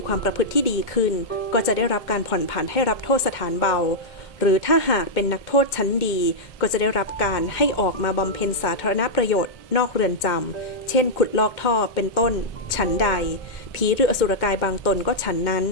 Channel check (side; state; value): right; late; 2.1 ms